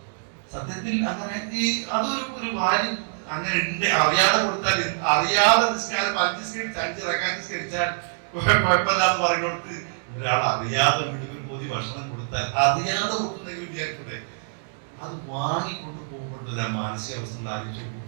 സത്യത്തിൽ അങ്ങനെ അതൊരു ഭാര്യ അങ്ങനെ ഉണ്ട്. അറിയാതെ കൊടുത്താൽ അറിയാതെ നിസ്കാരം 5 നിസ്കരിച്ച് 5 റക്അത്ത് നിസ്കരിച്ചാൽ കുഴപ്പമില്ലാന്ന് പറഞ്ഞുകൊടുത്ത് ഒരാൾ അറിയാതെ വീട്ടിൽ പോയി ഭക്ഷണം കൊടുത്താൽ അറിയാതെ കൊടുക്കുന്നെങ്കിൽ വിചാരിക്കട്ടെ, അത് വാങ്ങിക്കൊണ്ട് പോകുമ്പോഴത്തെ മാനസികാവസ്ഥ ആലോചിച്ചു.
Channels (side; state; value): left; silent; digital silence